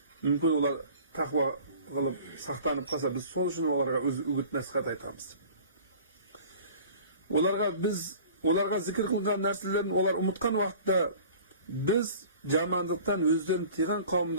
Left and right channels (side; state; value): both; inverted; correlation -0.45